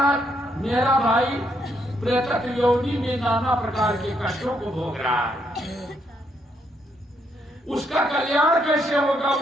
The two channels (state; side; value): normal; both; correlation 0.74